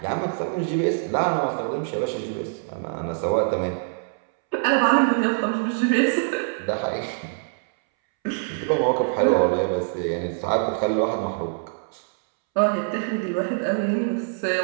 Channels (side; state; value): left; silent; 63 dB below the other